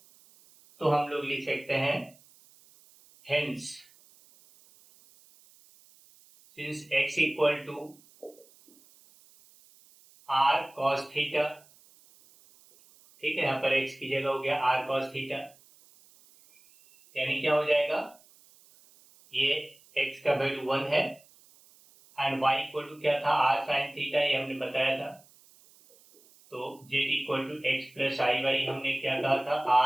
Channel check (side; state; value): right; noise; hiss, 28 dB below the sound